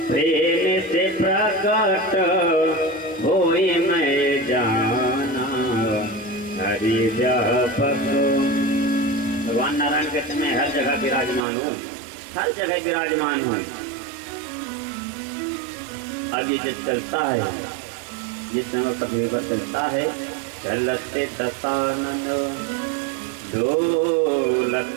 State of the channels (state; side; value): drops out; left; at 11.4 s